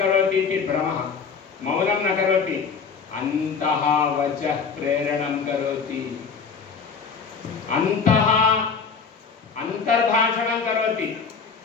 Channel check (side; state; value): right; quieter; 5.7 dB